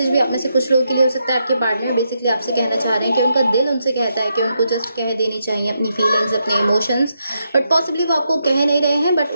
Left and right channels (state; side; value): inverted; both; correlation -0.82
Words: भी आप में से कुछ लोगों के लिए हो सकता है, आपके पार्टनर बेसिकली आपसे कहना चाह रहे हैं कि उनका दिल उनसे कहता है कि उनको जस्ट कह देनी चाहिए अपनी फीलिंग्स, अपने इमोशंस, बट पॉसिबली वो आपको कह नहीं रहे हैं, बट